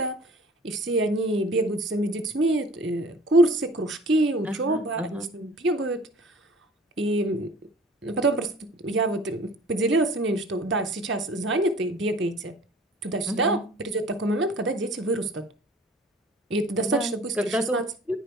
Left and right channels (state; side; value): normal; both; correlation 0.47